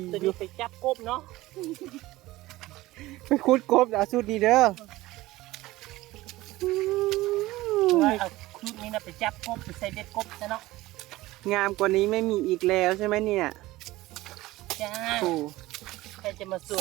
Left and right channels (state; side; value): quieter; left; 18.0 dB